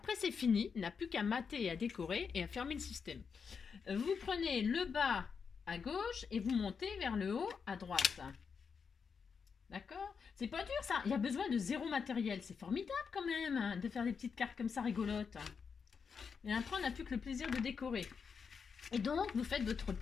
c'est fini. Il n'a plus qu'à mater et à décorer et à fermer le système. Vous prenez le bas à gauche et vous montez vers le haut à droite. D'accord? C'est pas dur ça. Il y a besoin de zéro matériel. C'est formidable quand même hein, de faire des petites cartes comme ça rigolotes. Et après, on n'a plus que le plaisir de décorer. Et donc, vous faites votre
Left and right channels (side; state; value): right; quieter; 6.0 dB